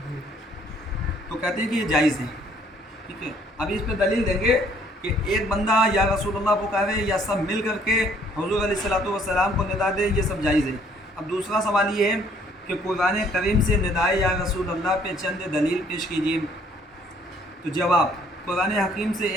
تو کہتے ہیں کہ یہ جائز ہے، ٹھیک ہے۔ ابھی اس پہ دلیل دیں گے کہ ایک بندہ یا رسول اللہ پکارے یا سب مل کر کے حضور علیہ الصلوۃ والسلام کو ندا دے، یہ سب جائز ہے۔ اب دوسرا سوال یہ ہے کہ قرآن کریم سے ندائے یا رسول اللہ پہ چند دلیل پیش کیجیے۔ تو جواب، قرآن حکیم سے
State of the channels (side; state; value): both; normal; correlation 0.62